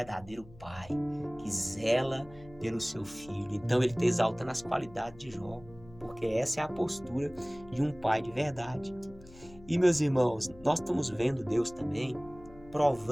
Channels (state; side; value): noise; left; hum, 21 dB below the sound